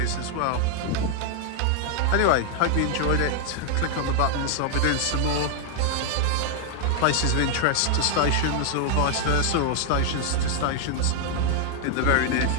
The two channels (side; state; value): both; different; correlation 0.00